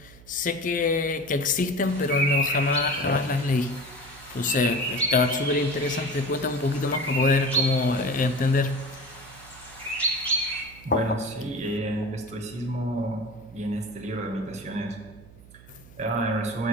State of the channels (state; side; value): noise; right; hum, 21 dB below the sound